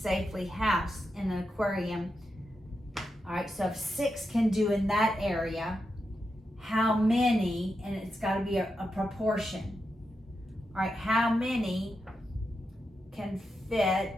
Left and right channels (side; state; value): both; normal; correlation 0.87